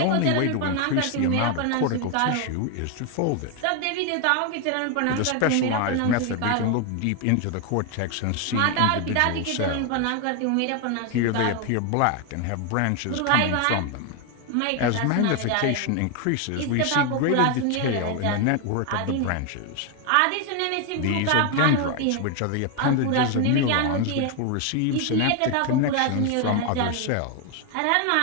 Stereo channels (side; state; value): both; different; correlation 0.01